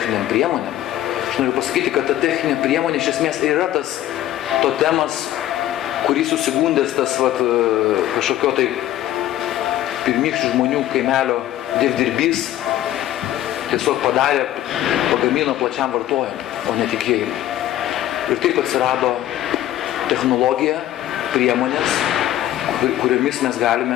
priemonėm, aš noriu pasakyti, kad ta techninė priemonė iš esmės yra tas totemas, kurį susigundęs tas kažkokio tai pirmykščių žmonių kaimelio dievdirbys tiesiog pagamino plačiam vartojimui, o ne tikėjimui. Ir taip atsirado technologija, priemonės, kuriomis mes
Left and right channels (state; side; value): quieter; right; 13.2 dB